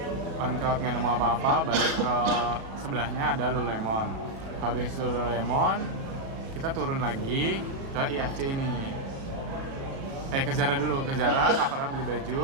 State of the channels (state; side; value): late; left; 36 ms